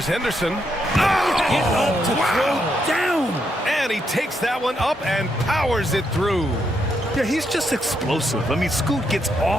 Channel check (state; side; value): normal; both; correlation 0.79